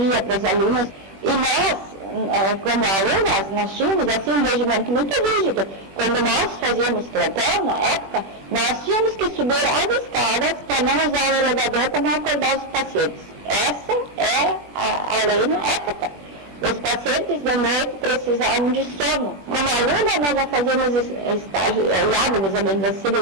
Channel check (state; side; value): late; left; 21 ms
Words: para as alunas, e nós, como alunas, nós tínhamos assim um regimento muito rígido. Quando nós fazíamos plantão, na época, nós tínhamos que subir as escadas para não usar o elevador, para não acordar os pacientes. Essa é a lei na época. Os pacientes de noite precisavam de sono. Como aluna, nós já fazíamos estágio, olhávamos as